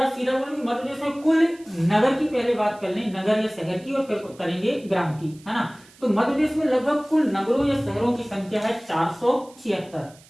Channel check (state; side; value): noise; right; hiss, 26 dB below the sound